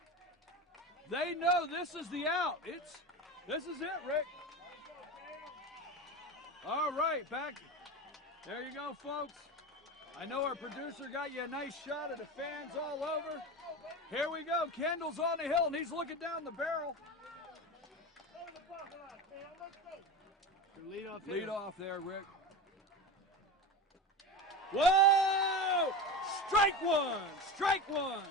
They know this is the out. This is it, Rick. All right, back. There you go, folks. I know our producer got you a nice shot of the fans all over. Here we go. Kendall's on the hill, and he's looking down the barrel. Lead off there, Rick. Whoa! Strike one! Strike one!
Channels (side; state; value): both; normal; correlation 0.26